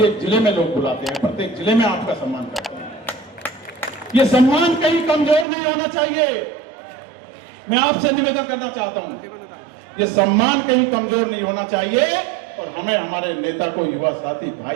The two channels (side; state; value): left; drops out; at 5.5 s